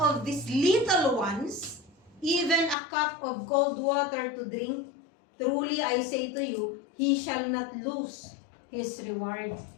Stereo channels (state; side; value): drops out; right; at 2.8 s